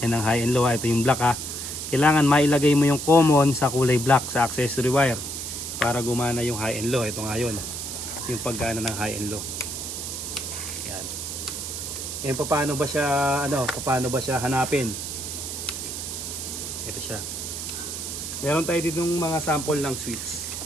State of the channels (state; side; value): noise; right; hiss, 6 dB below the sound